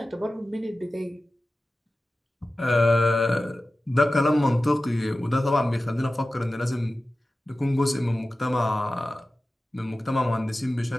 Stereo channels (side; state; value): both; normal; correlation 0.95